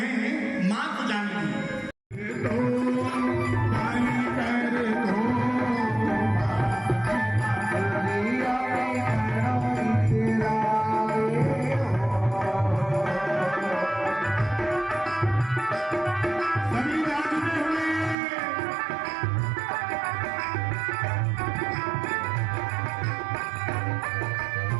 मां को जानती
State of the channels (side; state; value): left; drops out; at 18.2 s